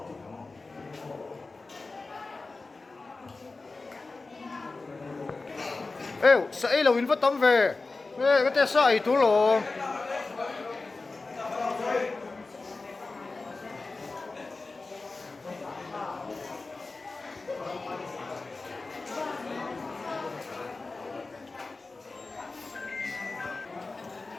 sẽ là win phát tấm về cái tay sai tú lộ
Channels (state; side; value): quieter; right; 3.6 dB